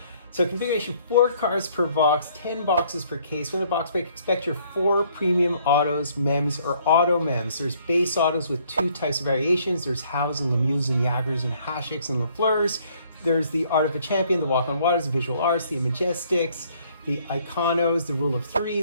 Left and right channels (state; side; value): inverted; both; correlation -0.63